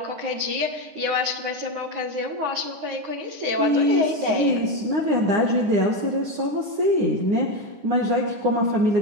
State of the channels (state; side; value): late; left; 9.6 ms